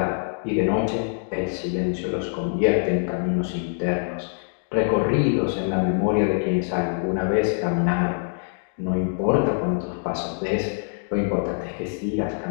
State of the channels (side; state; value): right; silent; digital silence